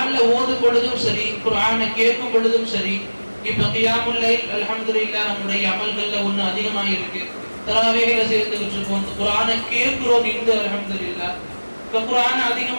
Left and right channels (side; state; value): both; inverted; correlation -1.00